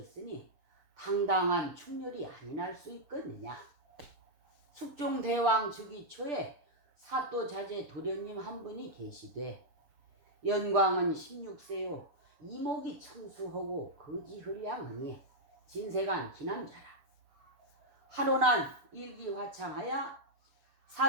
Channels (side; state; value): left; late; 6.7 ms